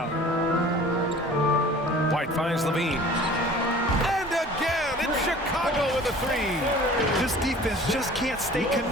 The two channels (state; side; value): normal; both; correlation 0.46